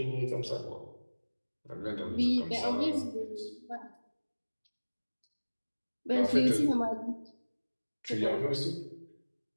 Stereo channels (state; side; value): inverted; both; correlation -1.00